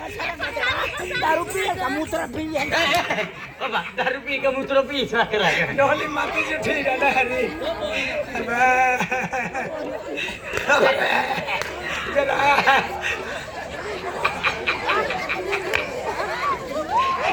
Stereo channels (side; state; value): both; identical; correlation 1.00